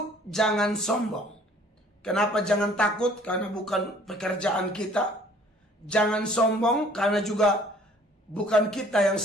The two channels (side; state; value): both; normal; correlation 0.56